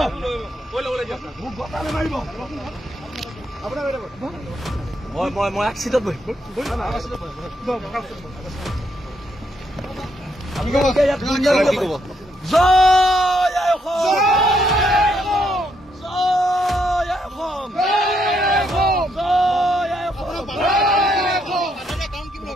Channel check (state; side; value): normal; both; correlation 0.75